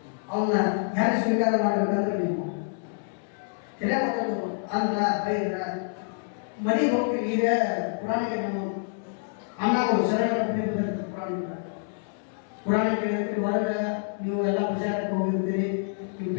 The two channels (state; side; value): silent; right; digital silence